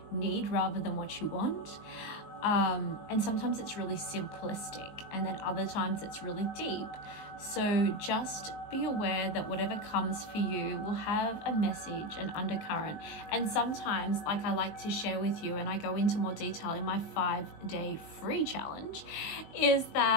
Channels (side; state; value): right; late; 19 ms